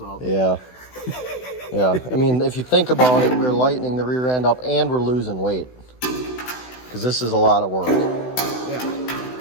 Yeah. Yeah. I mean, if you think about it, we're lightening the rear end up and we're losing weight, because this is a lot of work. Yeah.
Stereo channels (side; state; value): right; late; 16 ms